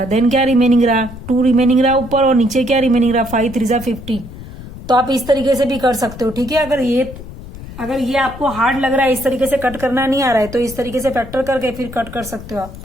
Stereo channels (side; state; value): left; noise; rumble, 14 dB below the sound